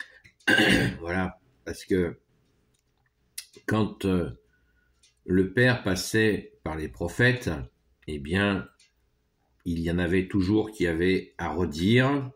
Voilà, parce que quand le Père passait par les prophètes, eh bien, il y en avait toujours qui avaient à redire.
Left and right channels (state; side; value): identical; both; correlation 1.00